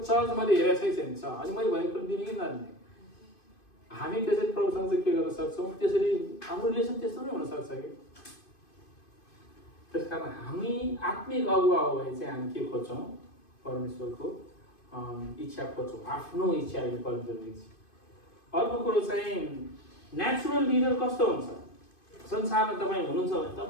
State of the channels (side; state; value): right; late; 2.5 ms